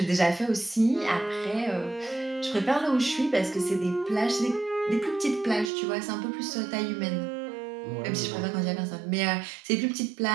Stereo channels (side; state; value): left; drops out; at 5.7 s